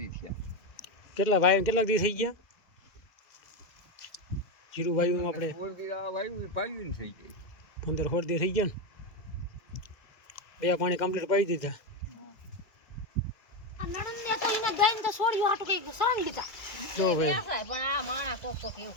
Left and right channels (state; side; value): late; right; 2.0 ms